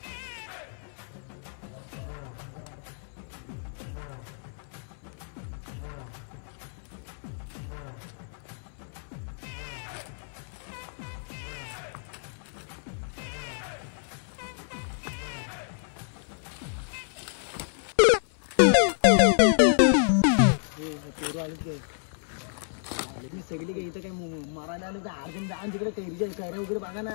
सगळी काही इथं काय मारायला आलं तर अर्जन जाण तिकडे कैरीच्या कैऱ्या वगैरे बघा ना.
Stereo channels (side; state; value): right; silent; 58 dB below the other